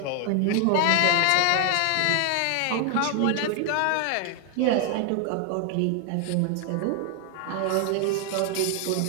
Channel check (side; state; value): both; different; correlation 0.00